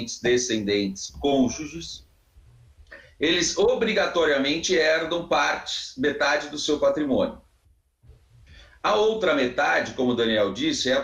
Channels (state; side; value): identical; both; correlation 1.00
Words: descendentes, cônjuges, eles obrigatoriamente herdam metade do seu patrimônio. A outra metade, como o Daniel disse, é a